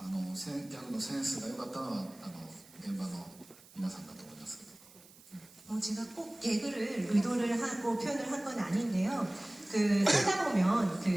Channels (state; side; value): noise; right; hiss, 23 dB below the sound